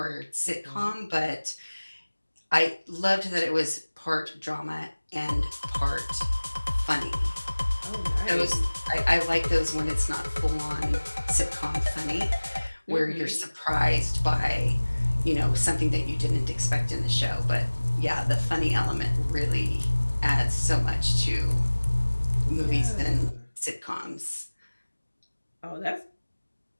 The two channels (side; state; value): both; inverted; correlation -1.00